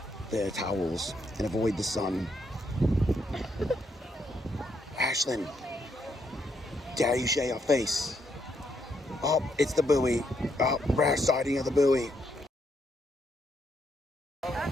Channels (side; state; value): both; normal; correlation 0.76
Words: their towels and avoid the sun. Ashlyn, dare you share your face? Oh, it's the buoy. Oh, rare sighting of the buoy.